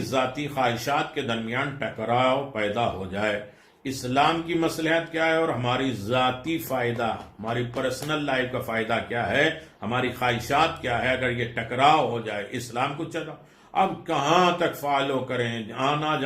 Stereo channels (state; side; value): identical; both; correlation 1.00